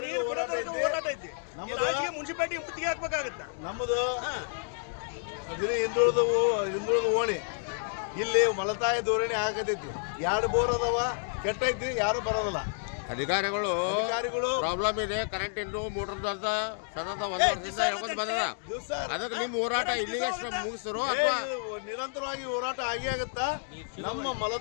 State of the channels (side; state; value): right; silent; digital silence